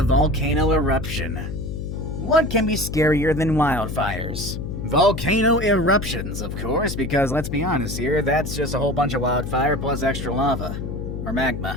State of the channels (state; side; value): noise; left; hum, 6 dB below the sound